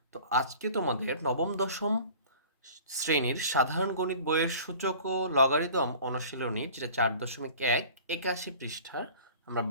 তো আজকে তোমাদের নবম দশম শ্রেণীর সাধারণ গণিত বইয়ের সূচক ও লগারিদম অনুশীলনী, যেটা 4.1 81 পৃষ্ঠার আমরা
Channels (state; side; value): inverted; both; correlation -0.44